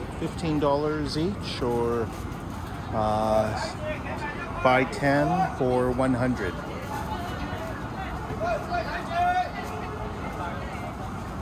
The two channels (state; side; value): identical; both; correlation 1.00